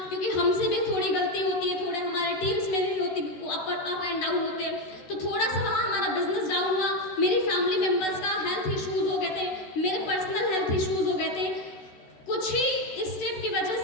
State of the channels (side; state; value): right; late; 13 ms